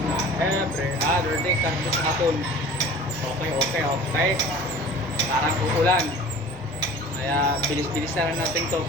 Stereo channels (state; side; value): noise; right; rumble, 20 dB below the sound